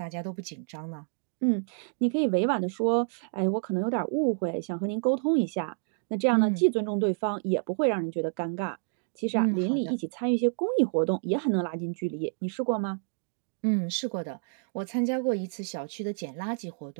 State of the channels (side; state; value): left; silent; digital silence